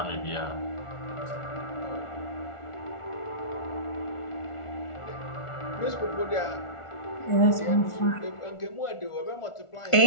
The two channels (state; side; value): late; right; 1.4 ms